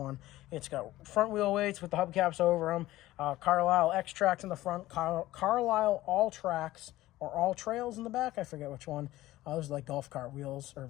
It's got front wheel weights with the hubcaps over them. Carlisle X tracks in the front. Carlisle All Tracks or all trails in the back. I forget which one. Those are like golf cart wheels,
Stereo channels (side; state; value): right; quieter; 16.3 dB